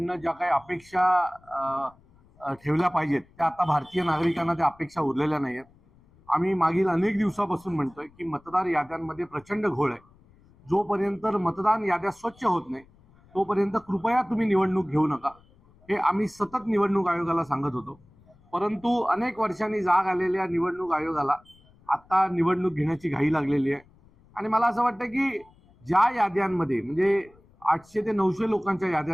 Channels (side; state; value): left; noise; rumble, 29 dB below the sound